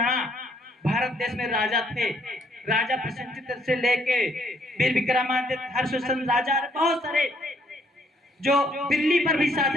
भारत देश में राजा थे। राजा प्रसेनजित से लेके वीर विक्रमादित्य, हर्षवर्धन राजा, बहुत सारे जो दिल्ली पर भी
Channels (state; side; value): normal; both; correlation 0.67